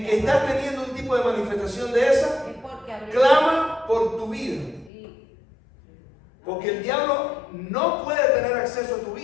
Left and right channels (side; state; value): right; drops out; at 4.9 s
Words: que estás teniendo un tipo de manifestación de esa, Es porque abrió. clama por tu vida. Sí. Porque el diablo no puede tener acceso a tu